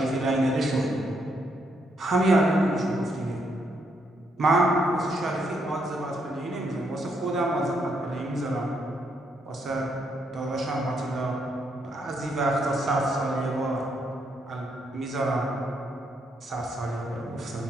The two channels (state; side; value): normal; both; correlation 0.76